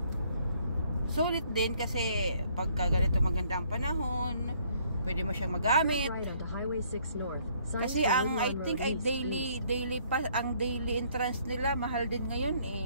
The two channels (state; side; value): inverted; both; correlation -0.64